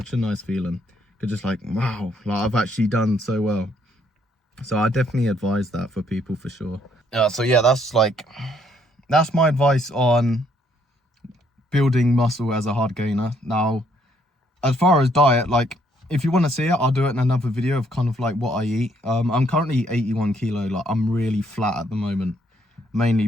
a nice feeling. You're just like, wow, like I've actually done so well. So I definitely advise that for people for sure. So yeah, that's my advice on building muscle as a hard gainer. Now, as far as diet, like, if you want to see it, I'll do it in another video of kind of like what I eat. I'm currently 81 kilo. Like, I'm really flat at the moment, mainly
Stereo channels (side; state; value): both; normal; correlation 0.69